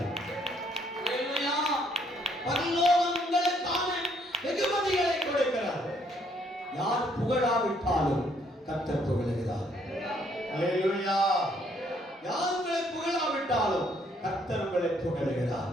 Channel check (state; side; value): normal; both; correlation 0.68